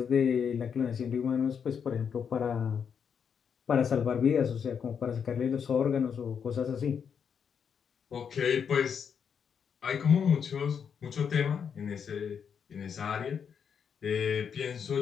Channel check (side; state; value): right; quieter; 7.1 dB